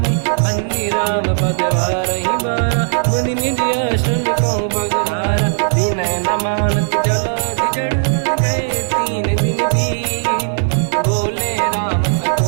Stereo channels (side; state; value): left; silent; digital silence